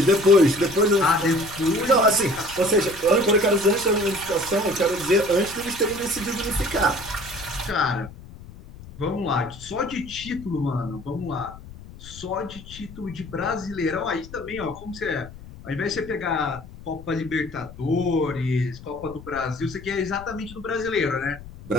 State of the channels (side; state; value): left; noise; rumble, 17 dB below the sound